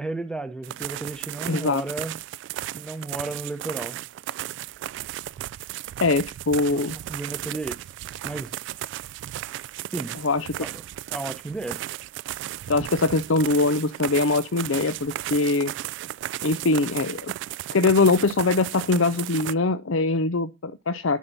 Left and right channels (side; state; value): both; normal; correlation 0.00